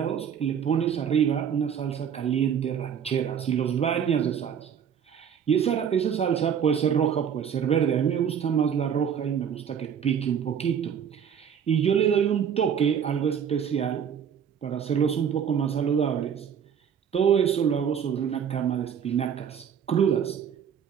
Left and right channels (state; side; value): quieter; left; 8.1 dB